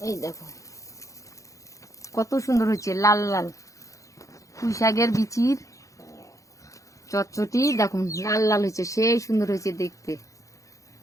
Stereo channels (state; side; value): late; right; 0.16 ms